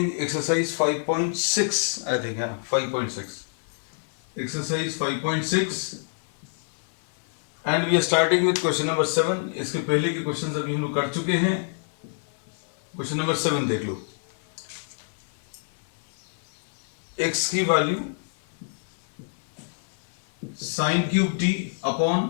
exercise 5.6, I think, yeah, 5.6. Exercise 5.6 and we are starting with question number 7. इसके पहले के questions अभी हम लोग कर चुके हैं. क्वेश्चन नंबर 7 देख लो. x की value sin cube t upon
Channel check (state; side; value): silent; right; 55 dB below the other